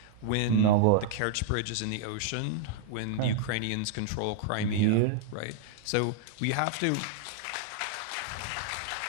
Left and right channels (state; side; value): different; both; correlation -0.01